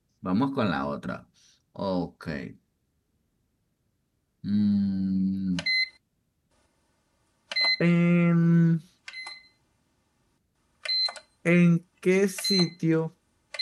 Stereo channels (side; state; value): both; identical; correlation 1.00